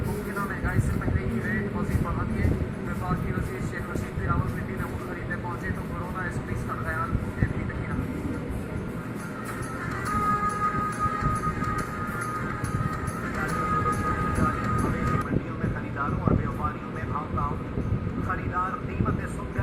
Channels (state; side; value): identical; both; correlation 1.00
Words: मुमकिन महंगाई से पहले ही रेट मजीद बढ़ा दिए। विभाग की वजीर शेख रशीद भी रावलपिंडी में ऊँट खरीदने पहुंचे तो कोरोना SOPs का ख्याल उन्हें भी नहीं रहा। मवेशी मंडियों में खरीदारों और व्यापारियों में भाव ताव। खरीदार कीमतें